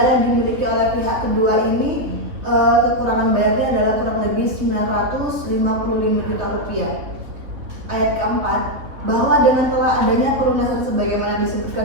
yang dimiliki oleh pihak kedua ini kekurangan bayarnya adalah kurang lebih Rp955 juta. Ayat keempat, bahwa dengan telah adanya pelunasan sebagaimana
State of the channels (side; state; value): left; late; 3.4 ms